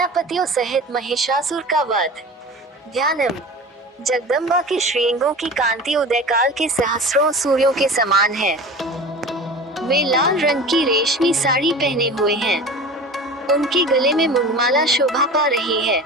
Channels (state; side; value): normal; both; correlation 0.36